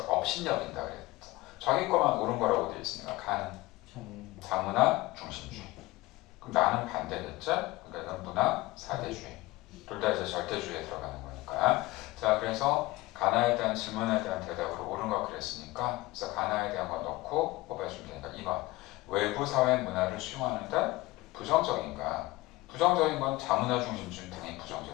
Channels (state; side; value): quieter; right; 20.0 dB